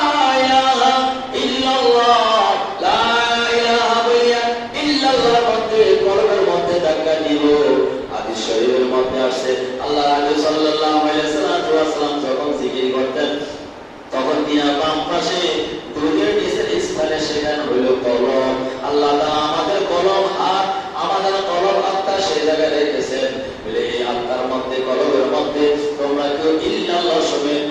ইলাহা ইল্লাল্লাহ, লা ইলাহা বলিয়া ইল্লাল্লাহর মধ্যে কলবের মধ্যে ধাক্কা দিব। হাদিস শরীফের মধ্যে আসছে আল্লাহ রাসূল সাল্লাল্লাহু আলাইহি ওয়াসাল্লাম যখন জিকির করতেন তখন তিনার বাম পাশে দুধের নিচের স্থানে সেখানে হইল কলম। আল্লাহ তাআলা আমাদের কলম হাত, আমাদের কলম আত্মা সেই জায়গায় রেখেছেন বলে এই আত্মার মধ্যে কলমের মধ্যে তোমরা কেউ ইল্লাল্লাহ সমেত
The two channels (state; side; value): identical; both; correlation 1.00